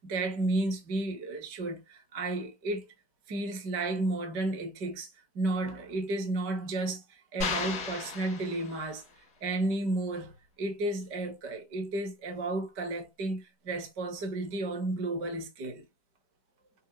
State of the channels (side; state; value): left; late; 5.1 ms